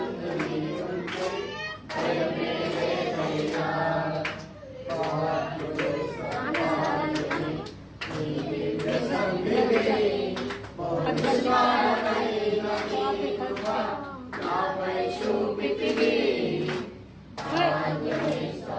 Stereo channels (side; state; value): both; identical; correlation 1.00